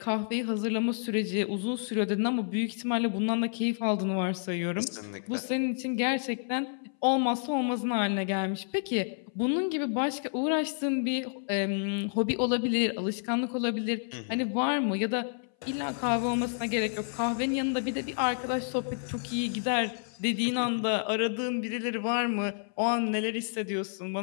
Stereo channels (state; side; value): silent; right; 58 dB below the other